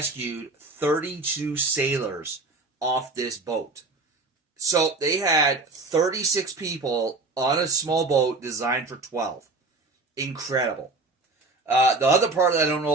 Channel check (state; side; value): quieter; left; 3.4 dB